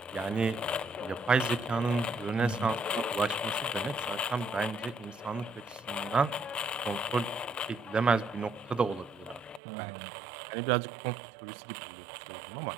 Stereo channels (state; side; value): drops out; left; at 9.6 s